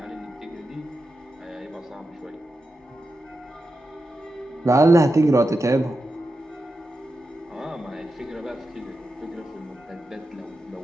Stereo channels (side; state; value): both; normal; correlation 0.90